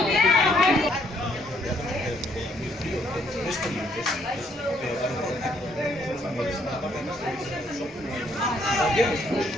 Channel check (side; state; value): both; normal; correlation 0.69